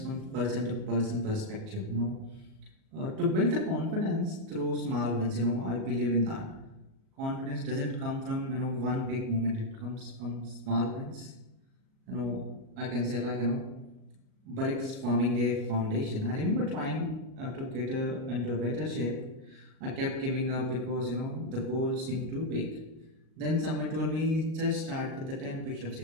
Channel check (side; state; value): left; late; 37 ms